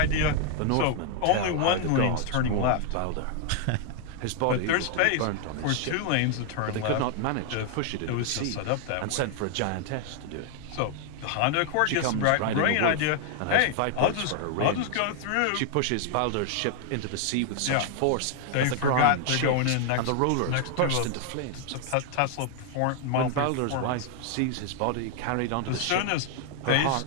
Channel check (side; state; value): both; different; correlation 0.00